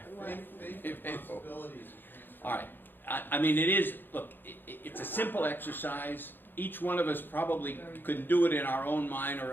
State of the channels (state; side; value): late; right; 0.096 ms